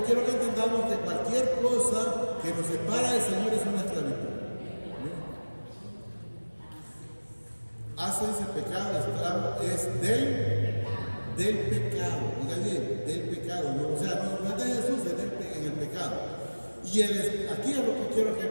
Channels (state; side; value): inverted; both; correlation -1.00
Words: quiero que entendamos que cualquier cosa que nos separa del Señor es una esclavitud. Hace ese pecado, esclavo es del pecado, oiga bien, del pecado, no, o sea, no es de Jesús, es en el pecado. Y aquí es lo que quiero que